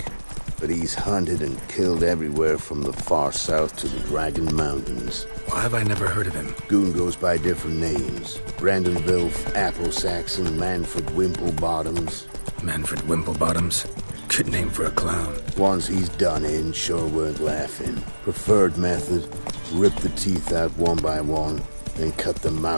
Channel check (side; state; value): both; inverted; correlation -1.00